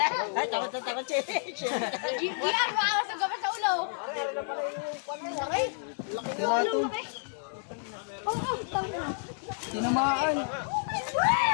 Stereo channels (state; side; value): silent; right; digital silence